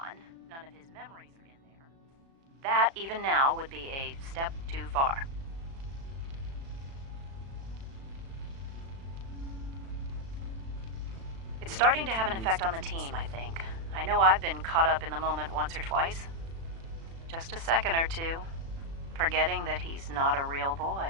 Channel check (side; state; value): left; late; 36 ms